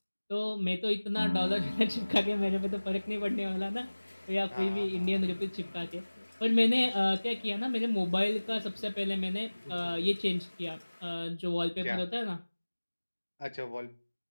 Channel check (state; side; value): inverted; both; correlation -1.00